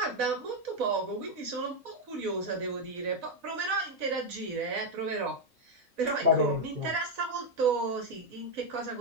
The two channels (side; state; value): both; normal; correlation 0.03